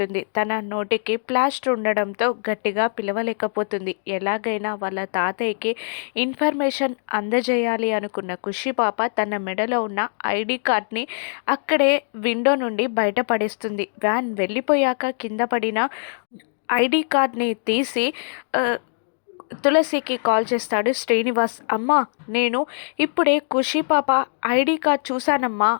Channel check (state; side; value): silent; right; digital silence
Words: తన నోటికి ప్లాస్టర్ ఉండడంతో గట్టిగా పిలవలేకపోతుంది. ఎలాగైనా వాళ్ళ తాతయ్యకి ఇన్ఫర్మేషన్ అందజేయాలి అనుకున్న ఖుషి పాప తన మెడలో ఉన్న ఐడి కార్డ్ని అక్కడే విండో నుండి బయటపడేస్తుంది. వ్యాన్ వెళ్ళిపోయాక కింద పడిన ఐడి కార్డ్ని తీసి తులసికి కాల్ చేస్తాడు శ్రీనివాస్. "అమ్మా, నేను ఇప్పుడే ఖుషి పాప ఐడి కార్డ్ చూశానమ్మా"